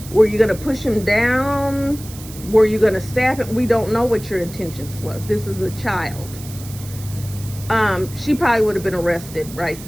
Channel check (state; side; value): noise; right; hiss, 16 dB below the sound